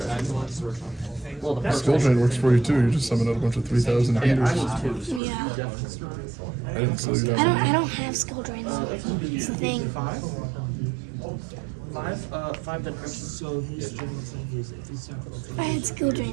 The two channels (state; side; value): drops out; left; at 5.2 s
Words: Well, the first Skill drain works for you too. You just summon out a bunch of 3,000 I beaters. need 2. Yeah. I didn't slow you I down. don't have skill drains. It's the thing. 5? 5 then crimson. So his general thing is if you sacrifice. If I had skill